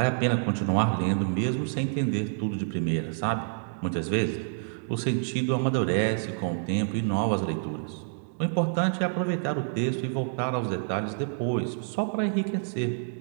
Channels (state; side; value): silent; left; digital silence